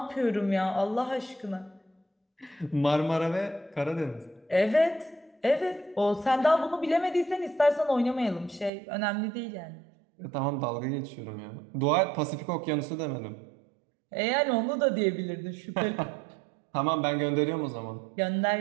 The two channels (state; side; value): drops out; left; at 8.7 s